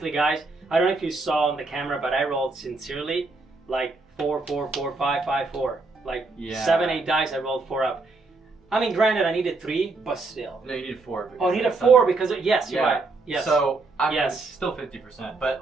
guys, I don't know if you saw on the camera, but I rolled sincerely like 4, 4, 4, 5, 5, 4. Like Yeah. 7, 8 dice, I rolled 4 up. I mean, granted, I needed 3, but still. No, you needed 4. Oh, I needed that's 4 under- because yes, you're Yeah. right. Yes. So I mean, Yes. it's still 50%, but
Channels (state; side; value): quieter; left; 3.6 dB